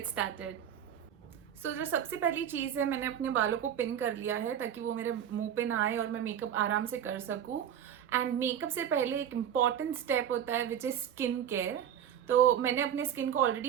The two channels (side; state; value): left; quieter; 9.5 dB